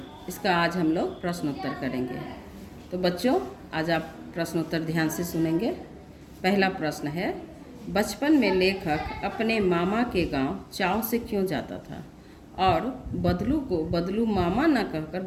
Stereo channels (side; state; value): both; identical; correlation 1.00